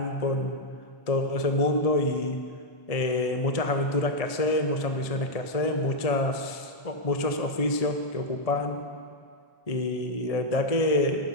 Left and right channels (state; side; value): late; right; 1.7 ms